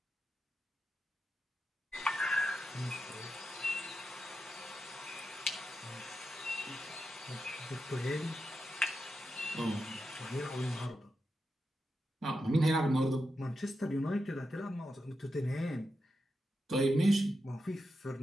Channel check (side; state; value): both; normal; correlation 0.87